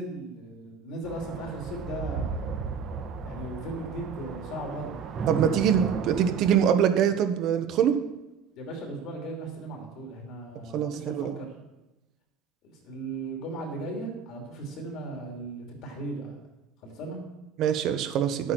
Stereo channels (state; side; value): quieter; left; 7.1 dB